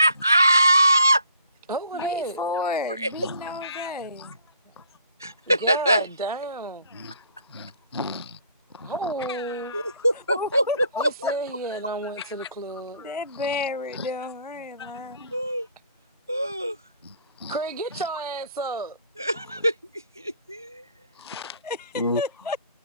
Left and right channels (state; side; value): inverted; both; correlation -0.60